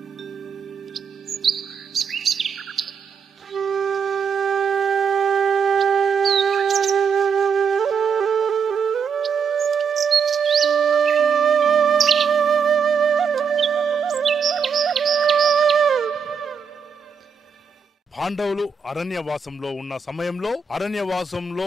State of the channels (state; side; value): quieter; left; 6.2 dB